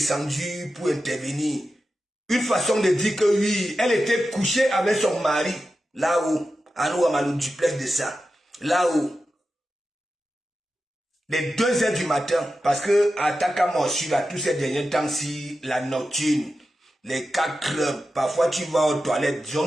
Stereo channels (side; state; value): both; normal; correlation 0.91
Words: pour intervenir. une façon de dire que oui, elle était couchée avec son mari, là-haut, à nous, à le duplex de ça, là-haut. Les 2 heures du matin, parce que à Takamosu, là, tous ces derniers temps-ci, la nocturne, les 4 clubs, parfois tu vas aux toilettes,